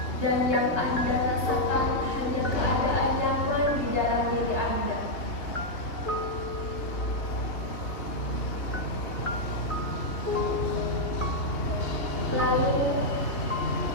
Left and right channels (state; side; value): late; right; 2.8 ms